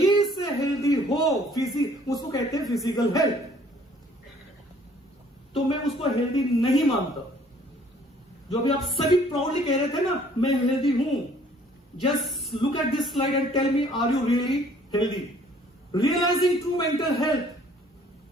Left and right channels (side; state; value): both; normal; correlation 0.58